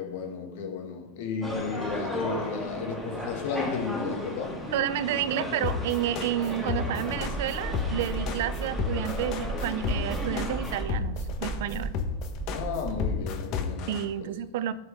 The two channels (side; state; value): both; normal; correlation 0.03